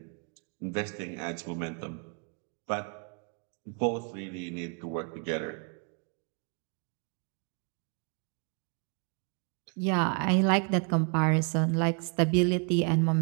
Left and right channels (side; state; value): left; quieter; 38.6 dB